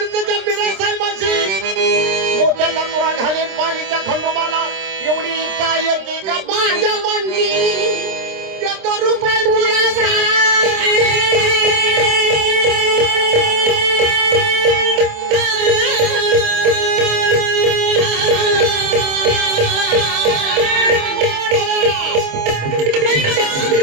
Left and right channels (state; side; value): late; left; 26 ms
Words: बिरा साहेबाशी मोत्याचा तुरा घालीन पाणीच्या खंडोबाला एवढी इच्छा आहे की का माझ्या मनची देतो रुपये तुला